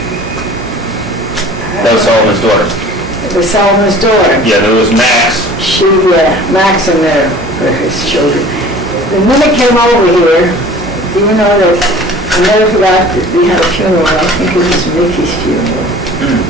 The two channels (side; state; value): both; normal; correlation 0.45